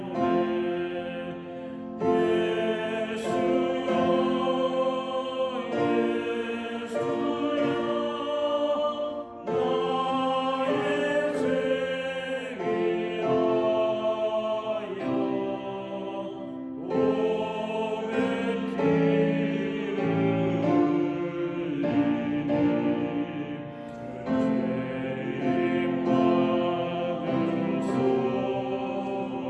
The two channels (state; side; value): identical; both; correlation 1.00